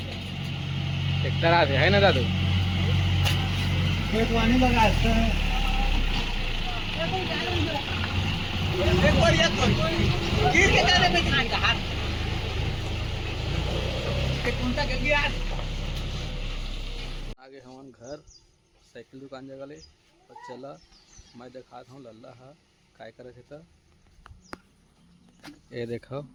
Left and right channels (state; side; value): identical; both; correlation 1.00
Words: ट्रैक्टर आते है ना दादू खेत वानी लगा है। एक बार ये तो गिर के जाने में खान का हाथ के कुंता के गया। आगे हमारे घर साइकिल दुकान जगह ले और चला मैं दिखाता हूँ लल्ला हा काय करे थे। तो ये देखो